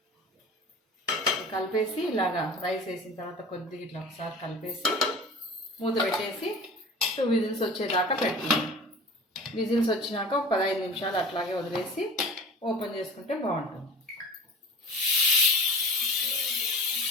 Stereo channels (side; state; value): both; normal; correlation 0.38